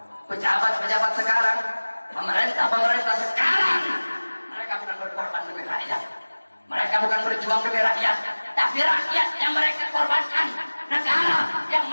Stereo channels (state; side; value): inverted; both; correlation -1.00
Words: Pejabat-pejabat sekarang, pemerintah sekarang, mereka bukan berkorban demi rakyat, mereka bukan berjuang demi rakyat, tapi rakyat yang mereka korbankan, negara yang